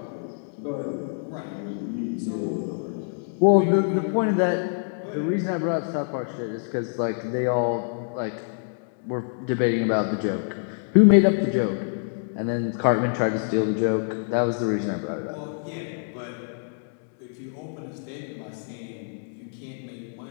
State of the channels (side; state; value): right; silent; digital silence